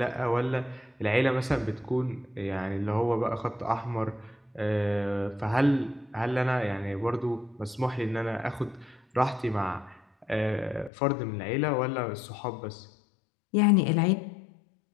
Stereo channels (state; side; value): drops out; right; at 10.9 s